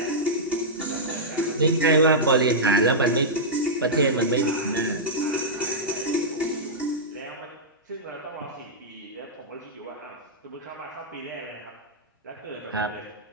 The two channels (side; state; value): both; normal; correlation -0.10